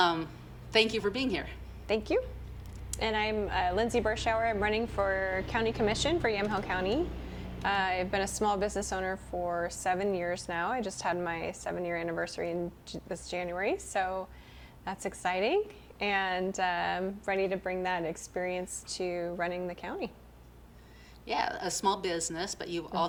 you for being here. Thank you. And I'm Lindsay Berschauer. I'm running for county commission for Yamhill County. I've been a small business owner for 7 years now. I just had my 7-year anniversary this January, so that's exciting. And ready to bring that experience to running the county. Yeah, a small business, but you've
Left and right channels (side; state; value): both; identical; correlation 1.00